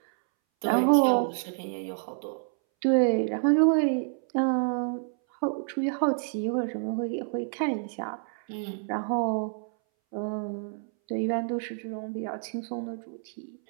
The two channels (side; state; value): left; silent; 59 dB below the other